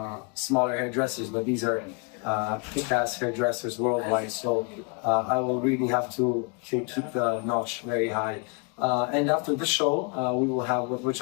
smaller hairdressers, but these are kick-ass hairdressers worldwide. So I will really have to keep the notch very high. And after the show, we will have, which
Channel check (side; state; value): right; quieter; 34.3 dB